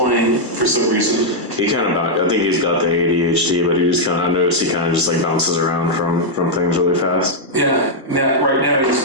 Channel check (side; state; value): left; late; 1.3 ms